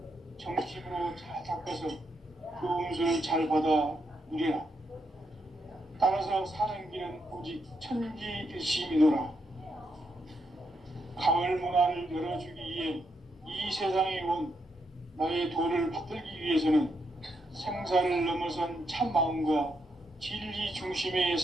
정심으로 잘 닦아서 그 운수를 잘 받아 누리라. 따라서 사는 길은 오직 천지일심이노라. 가을 문화를 열어주기 위해 이 세상에 온 나의 도를 받들기 위해서는 생사를 넘어선 참 마음과 진리 중심의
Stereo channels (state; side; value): normal; both; correlation 0.80